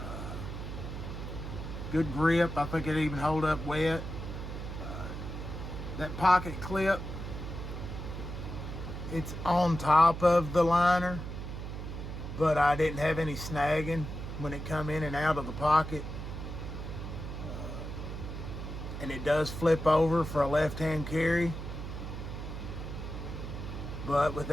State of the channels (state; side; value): noise; right; hum, 7 dB below the sound